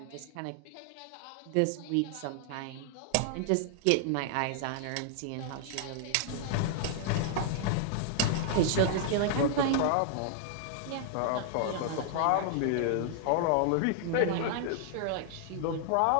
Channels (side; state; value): both; different; correlation 0.00